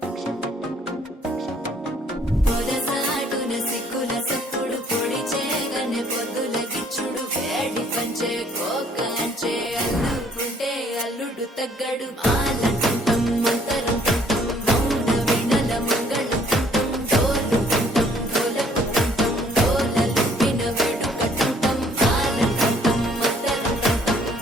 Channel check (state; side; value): normal; both; correlation 0.61